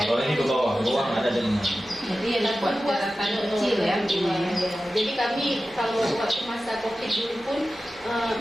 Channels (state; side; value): normal; both; correlation 0.94